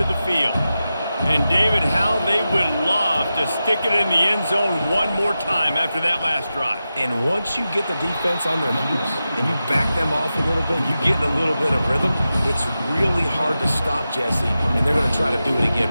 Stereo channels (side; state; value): both; inverted; correlation -0.92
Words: the field. And David, how they would love to stick it in the end zone one more time after that last drive. And once you get the defense on their heels and you back them off a little bit, you get in a little bit of rhythm, it's really hard to stop, Jesse, and they're going to try to do it